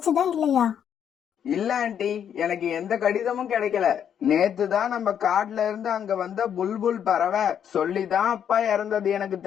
இல்லையா? இல்ல ஆண்டி, எனக்கு எந்த கடிதமும் கிடைக்கல. நேத்து தான் நம்ம காட்டுல இருந்து அங்க வந்த புல்புல் பறவை சொல்லிதான் அப்பா இறந்தது எனக்கு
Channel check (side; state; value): right; quieter; 8.8 dB